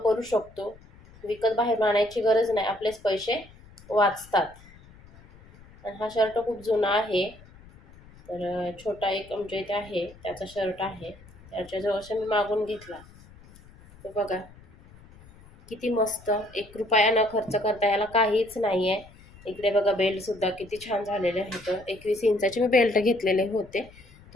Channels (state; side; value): noise; left; rumble, 23 dB below the sound